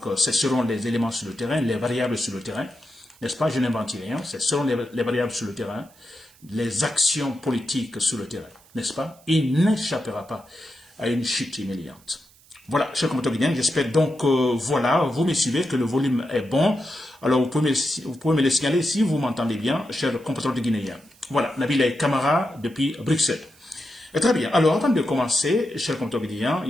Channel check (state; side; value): noise; right; hiss, 28 dB below the sound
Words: ce seront les éléments sur le terrain, les variables sur le terrain, n'est-ce pas, je n'invente rien, ce seront les variables sur le terrain, les actions politiques sur le terrain, n'est-ce pas? Il n'échappera pas à une chute humiliante. Voilà, chers compatriotes guinéens, j'espère donc, voilà, vous me suivez, que le volume est bon. Alors, vous pouvez me le signaler si vous m'entendez bien, chers compatriotes guinéens. Voilà, Nabilaï Kamara depuis Bruxelles. Et très bien, alors avant de commencer, chers compatriotes guinéens,